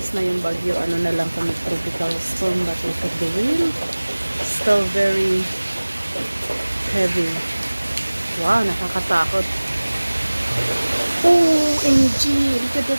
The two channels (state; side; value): inverted; both; correlation -1.00